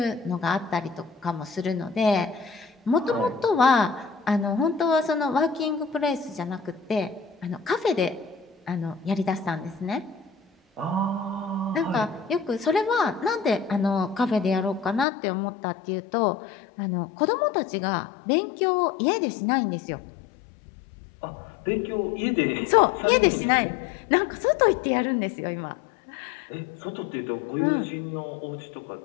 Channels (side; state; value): right; drops out; at 15.1 s